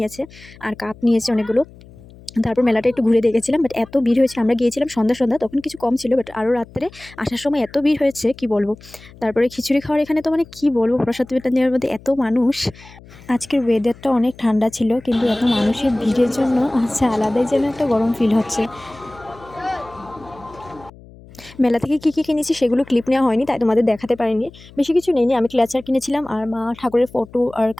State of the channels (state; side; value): noise; left; hum, 22 dB below the sound